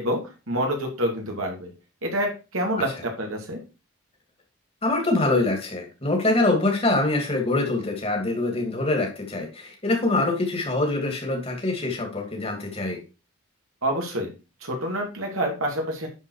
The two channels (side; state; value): both; normal; correlation 0.25